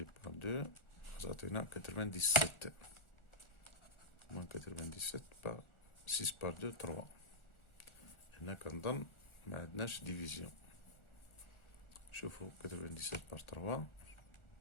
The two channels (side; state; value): right; late; 1.4 ms